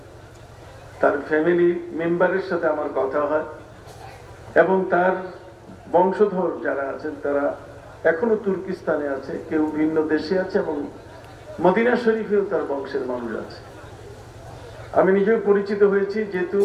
তার ফ্যামিলি মেম্বারের সাথে আমার কথা হয়, এবং তার বংশধর যারা আছেন তারা এখনো তুর্কিস্তানে আছে, কেউ ভিন্ন দেশে আছে, এবং মদিনা শরীফেও তার বংশের মানুষ আছে। আমি নিজেও পরিচিত হয়েছি, যেহেতু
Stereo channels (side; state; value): both; identical; correlation 1.00